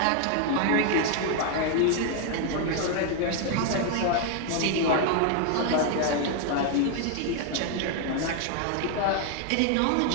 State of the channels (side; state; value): both; different; correlation 0.01